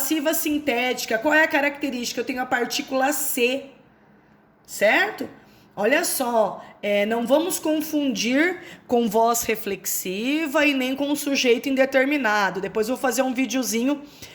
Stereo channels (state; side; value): identical; both; correlation 1.00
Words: sintética. Qual é a característica? Eu tenho a partícula C, certo? Olha só, não vamos confundir com voz reflexiva e nem com sujeito indeterminado. Depois eu vou fazer um videozinho